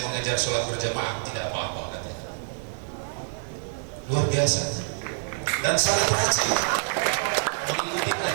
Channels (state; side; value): silent; left; digital silence